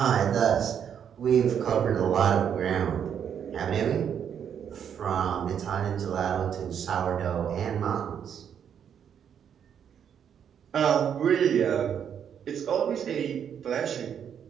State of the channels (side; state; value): left; quieter; 8.4 dB